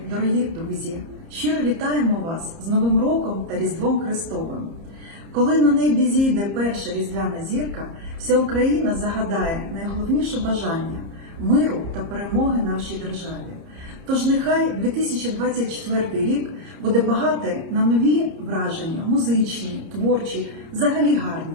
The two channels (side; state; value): left; late; 30 ms